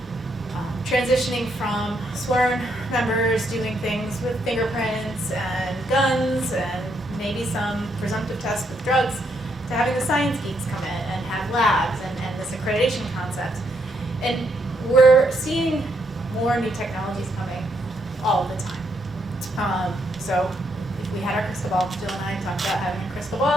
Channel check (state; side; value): normal; both; correlation 0.76